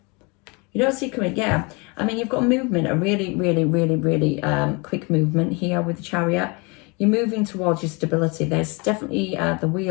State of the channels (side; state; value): right; quieter; 29.5 dB